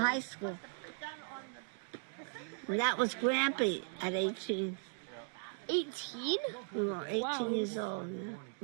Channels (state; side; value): silent; left; 53 dB below the other